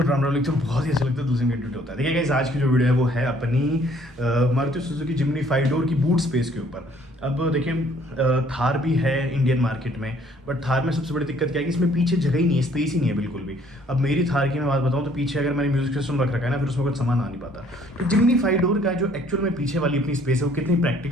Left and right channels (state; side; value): normal; both; correlation 0.61